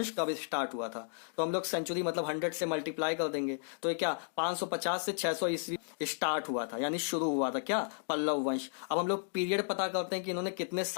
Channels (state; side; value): silent; right; digital silence